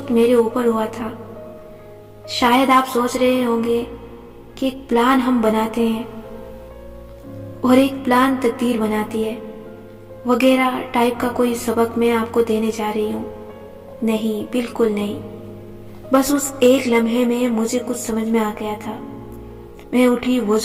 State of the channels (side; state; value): both; identical; correlation 1.00